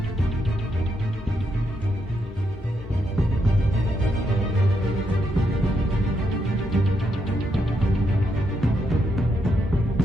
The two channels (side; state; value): both; normal; correlation 0.79